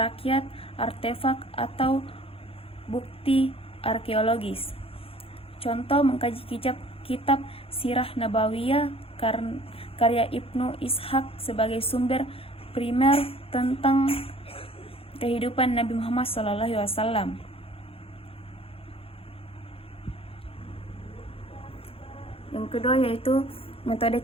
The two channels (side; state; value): right; late; 0.27 ms